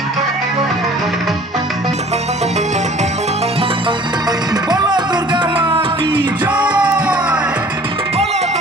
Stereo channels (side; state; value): both; normal; correlation 0.50